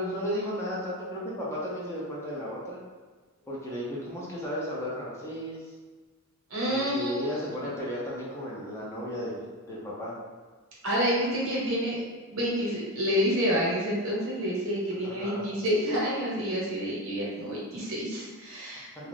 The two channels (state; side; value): normal; both; correlation 0.20